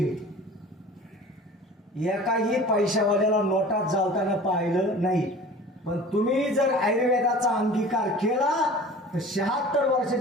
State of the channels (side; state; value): both; normal; correlation 0.42